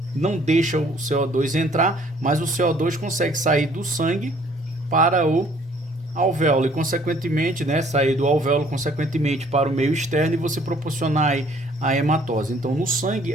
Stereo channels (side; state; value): both; normal; correlation 0.59